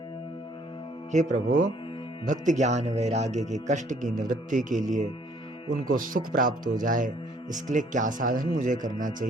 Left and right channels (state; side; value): normal; both; correlation 0.61